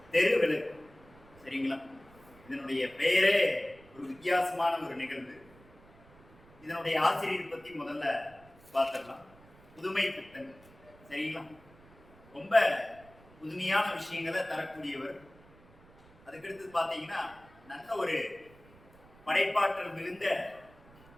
தெரு விளக்கு. சரிங்களா? இதனுடைய பெயரே ஒரு வித்தியாசமான ஒரு நிகழ்வு. இதனுடைய ஆசிரியர் பத்தி முதல்ல பார்த்துடலாம். புதுமை பித்தன். சரிங்களா? ரொம்ப புதுமையான விஷயங்களை தரக்கூடியவர். அதுக்கடுத்து பார்த்தீங்கன்னா நல்ல ஒரு படைப்பாற்றல் மிகுந்த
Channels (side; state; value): right; noise; rumble, 25 dB below the sound